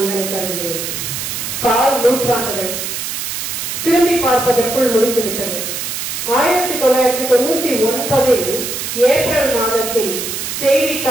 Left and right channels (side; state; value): right; noise; hiss, 4 dB below the sound